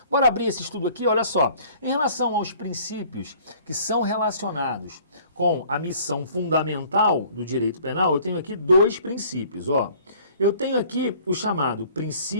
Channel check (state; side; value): inverted; both; correlation -0.54